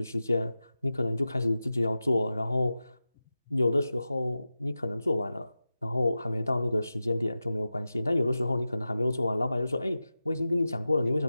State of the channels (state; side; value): inverted; both; correlation -0.94